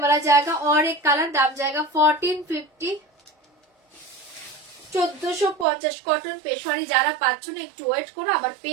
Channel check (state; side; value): drops out; left; at 5.7 s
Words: जाएगा, और एक कलर, दाम जाएगा 1450 1450। কটন পেশোয়ারি যারা পাচ্ছ না একটু ওয়েট করো, আবার